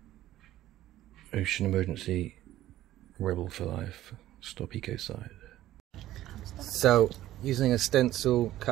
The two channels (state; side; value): quieter; left; 14.2 dB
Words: Ocean emergency, rebel for life, stop ecocide. So using a stencil